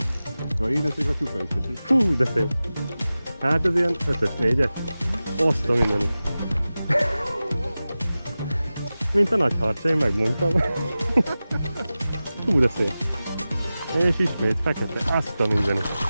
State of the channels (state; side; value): inverted; both; correlation -0.95